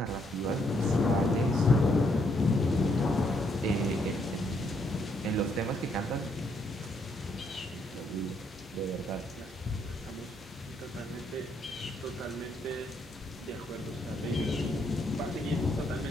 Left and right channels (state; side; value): normal; both; correlation 0.73